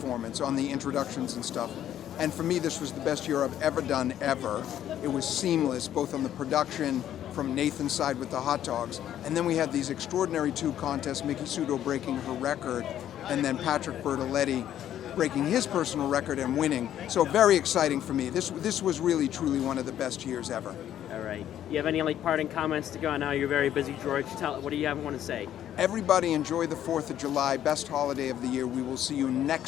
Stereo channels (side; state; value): right; quieter; 11.1 dB